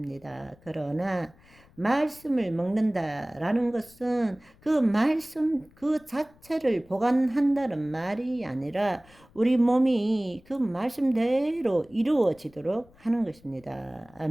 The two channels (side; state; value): left; noise; rumble, 28 dB below the sound